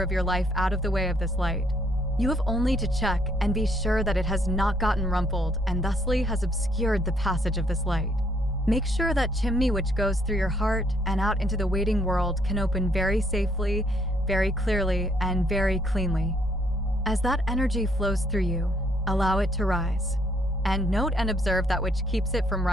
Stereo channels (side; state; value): both; normal; correlation 0.68